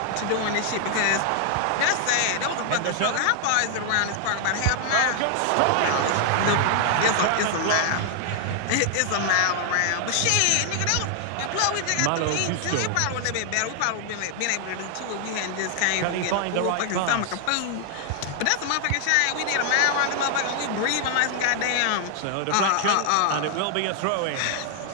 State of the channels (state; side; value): different; both; correlation 0.00